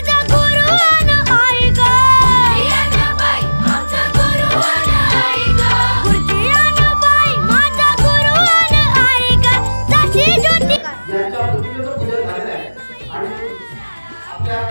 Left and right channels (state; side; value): inverted; both; correlation -1.00